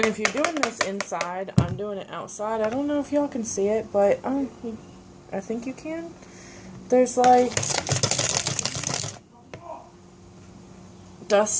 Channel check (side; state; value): both; identical; correlation 1.00